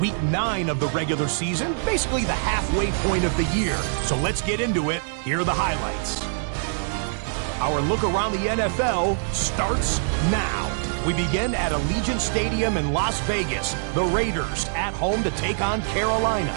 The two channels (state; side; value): silent; left; digital silence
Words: week 9 of the regular season, basically the halfway point of the year. So let's get into it. Here are the highlights. Our look around the NFL starts now. We begin at Allegiant Stadium in Las Vegas. The Raiders at home to take on Carolina.